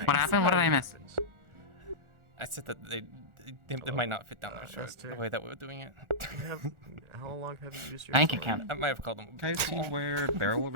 What happened? What did I miss? I said that they might not fit down their shirt the way that we were doing it. How long have you used your Bank account. I might have called them. Can I see where Barrel went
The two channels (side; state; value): left; late; 1.4 ms